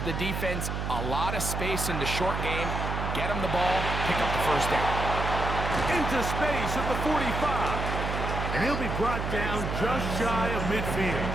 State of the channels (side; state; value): right; noise; hum, 3 dB below the sound